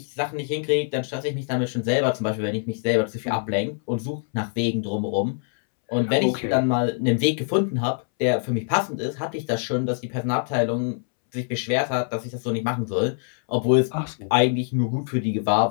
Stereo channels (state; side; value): silent; right; 62 dB below the other